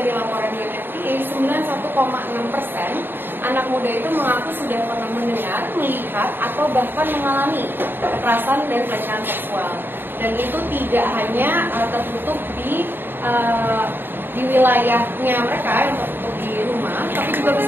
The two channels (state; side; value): late; left; 0.097 ms